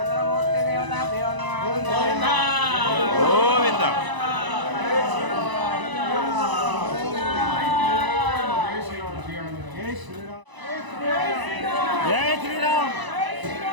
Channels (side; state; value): left; late; 1.0 ms